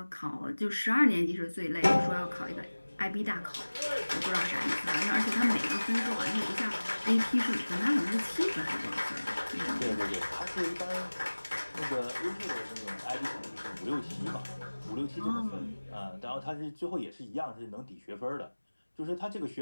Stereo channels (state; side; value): inverted; both; correlation -1.00